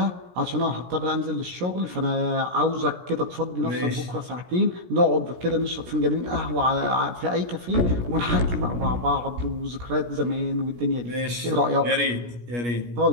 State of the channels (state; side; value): late; left; 17 ms